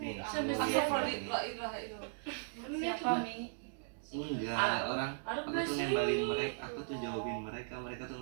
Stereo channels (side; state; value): left; silent; digital silence